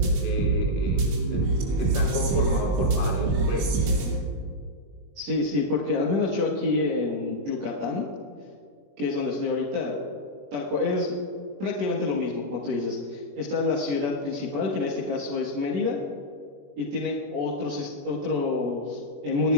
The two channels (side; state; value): left; late; 21 ms